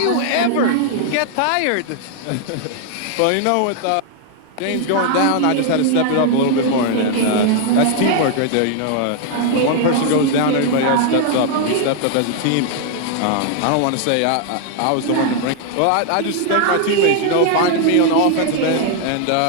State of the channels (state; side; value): different; both; correlation 0.00